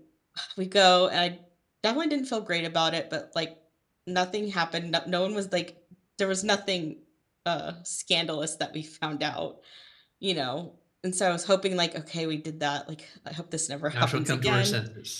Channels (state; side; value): identical; both; correlation 1.00